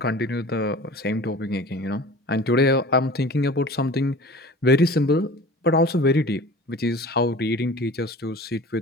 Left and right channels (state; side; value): normal; both; correlation 0.41